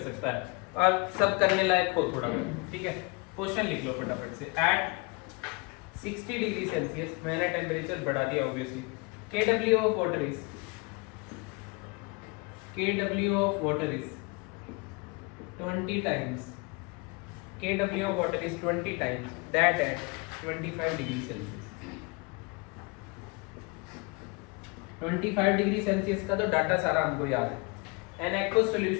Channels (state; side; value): quieter; right; 29.1 dB